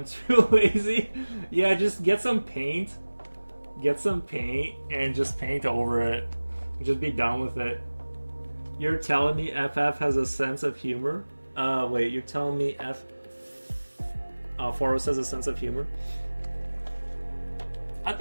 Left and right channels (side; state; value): both; inverted; correlation -1.00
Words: too lazy. Yeah, just get some paint. Get some paint and just paint over it. Just be done with it. You're telling me FF has a sense of humor? Wait, you're telling me Foros has a sense of humor? I